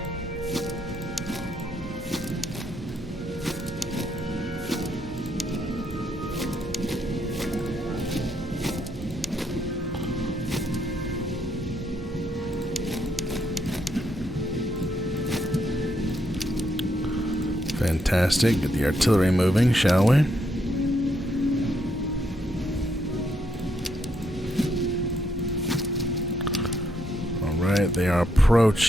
Fantastic. Get the artillery moving, shall we? Alright, they are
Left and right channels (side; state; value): both; normal; correlation 0.76